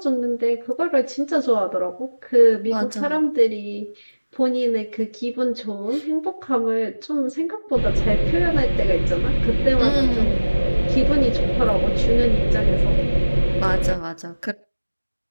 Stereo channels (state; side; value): inverted; both; correlation -1.00